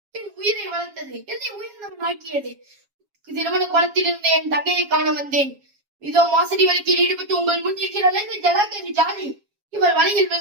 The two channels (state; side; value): late; left; 7.3 ms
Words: என் உயிரை வளர்த்தது, என்னை உயிரினம் ஆக்கியது. திருமண குளத்திலிருந்து என் தங்கையை காண வந்தேன். இதோ மோசடி வழக்கில் ஈடுபட்டு உங்கள் முன் இருக்கிறாள் இந்த ஜலாக்கி ஜாலி. இவள் வலையில்